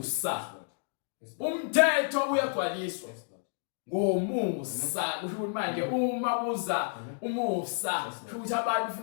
umthetho uyagcwaliswa ngomusa kusho ukuthi manje uma kuza umusa kusho ukuthi abantu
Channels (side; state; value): right; silent; digital silence